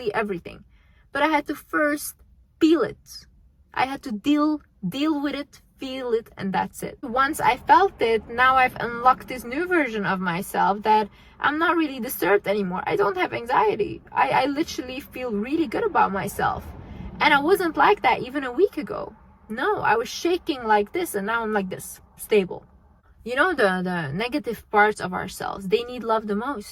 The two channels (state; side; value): identical; both; correlation 1.00